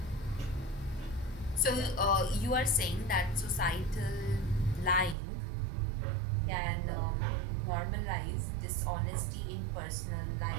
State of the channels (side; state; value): left; drops out; at 5.2 s